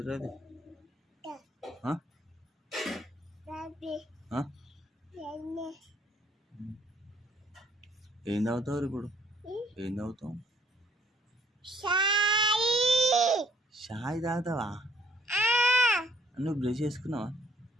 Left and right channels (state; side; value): normal; both; correlation 0.64